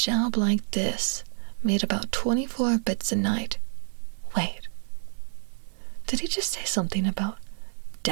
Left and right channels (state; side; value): silent; left; digital silence